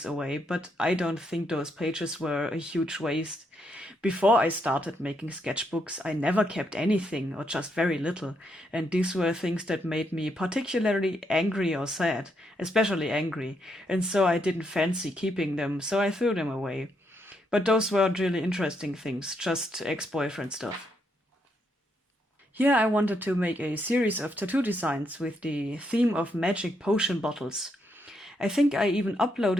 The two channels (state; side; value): normal; both; correlation 0.78